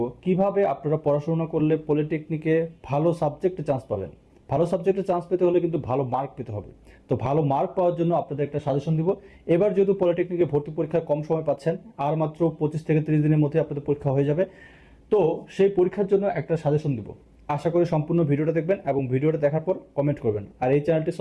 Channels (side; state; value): both; identical; correlation 1.00